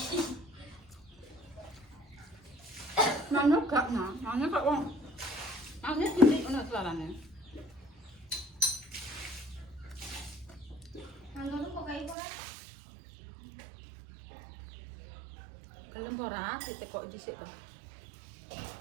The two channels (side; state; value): left; drops out; at 12.2 s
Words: Mana gak nah, mana kok wong. Ane titik ono suarane. Nanggung kok kayak ora. Gelem ora titik kok dhisik to.